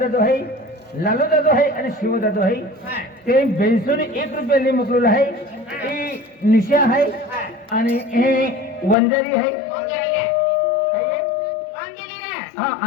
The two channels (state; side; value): drops out; right; at 9.0 s